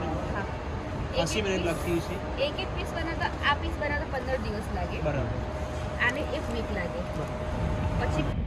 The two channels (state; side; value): identical; both; correlation 1.00